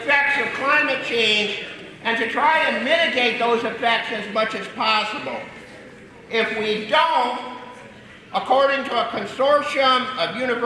of climate change and to try and mitigate those effects as much as possible. If we don't, according to a consortium of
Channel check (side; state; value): both; identical; correlation 1.00